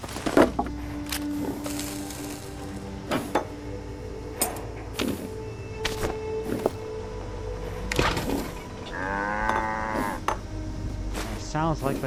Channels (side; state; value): both; identical; correlation 1.00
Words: It sounds like